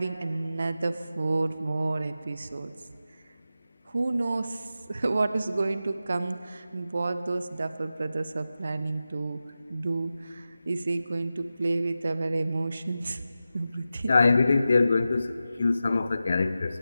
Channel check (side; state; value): both; inverted; correlation -0.92